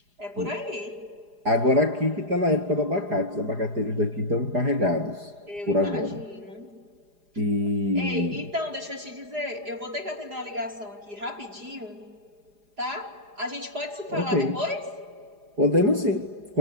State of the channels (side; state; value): left; late; 4.9 ms